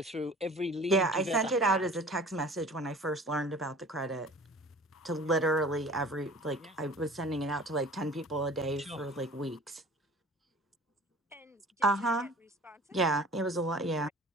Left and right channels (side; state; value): both; normal; correlation 0.45